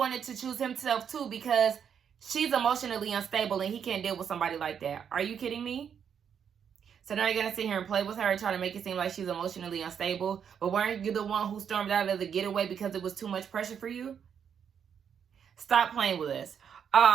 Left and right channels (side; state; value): left; quieter; 7.8 dB